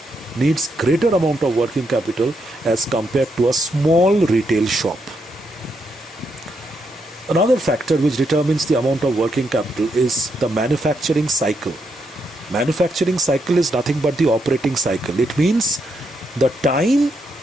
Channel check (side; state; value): both; normal; correlation 0.80